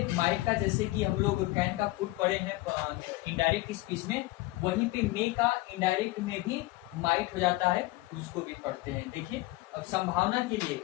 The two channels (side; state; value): right; quieter; 19.7 dB